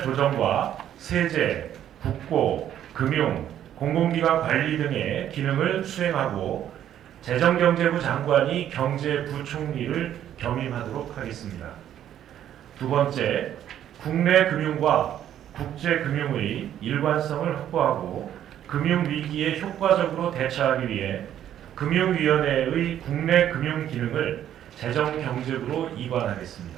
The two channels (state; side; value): quieter; left; 10.8 dB